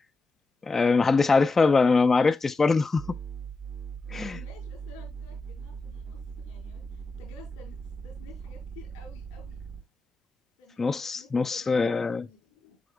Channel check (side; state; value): right; quieter; 3.6 dB